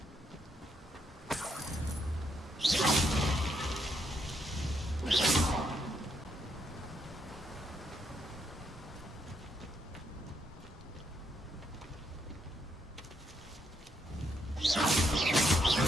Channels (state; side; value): normal; both; correlation 0.76